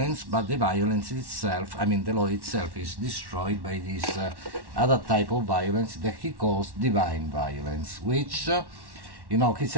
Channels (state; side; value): late; left; 1.1 ms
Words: but the violence itself, I mean the law itself, is destroyed by this other type of violence that he calls divine violence, which he